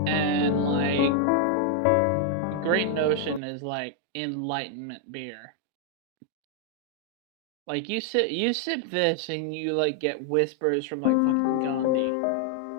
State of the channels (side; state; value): both; different; correlation 0.00